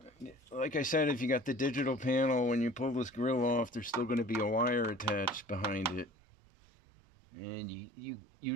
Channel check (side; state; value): left; drops out; at 6.1 s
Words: Like I said, if you got the digital panel, when you pull this grill off, there's still going to be a wire attached behind it, and you